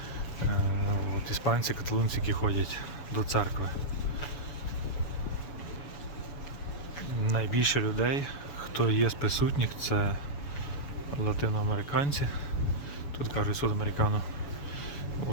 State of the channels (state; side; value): late; right; 7.0 ms